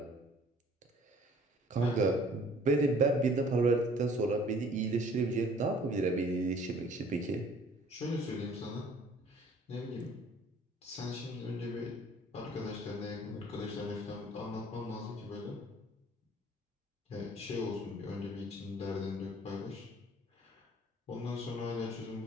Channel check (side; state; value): both; normal; correlation 0.54